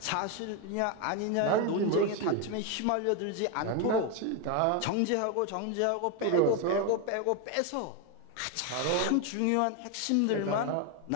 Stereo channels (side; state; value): both; different; correlation 0.02